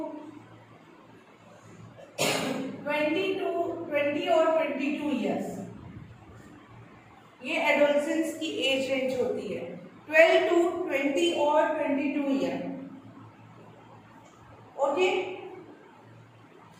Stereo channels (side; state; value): both; identical; correlation 1.00